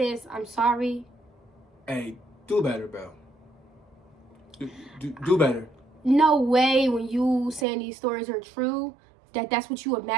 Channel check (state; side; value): drops out; left; at 7.7 s